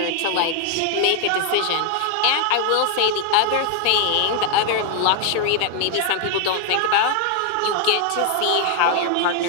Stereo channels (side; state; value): both; different; correlation 0.00